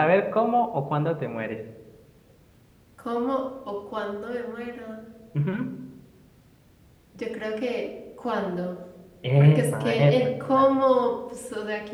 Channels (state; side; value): identical; both; correlation 1.00